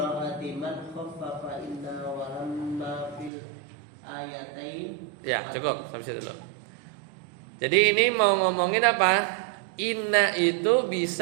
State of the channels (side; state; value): left; drops out; at 3.3 s